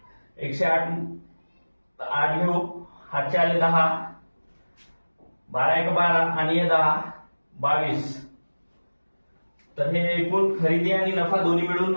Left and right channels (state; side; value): inverted; both; correlation -1.00